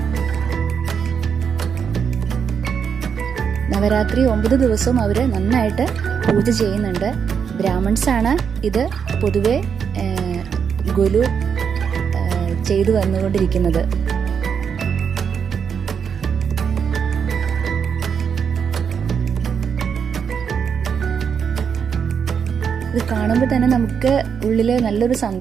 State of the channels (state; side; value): quieter; left; 7.0 dB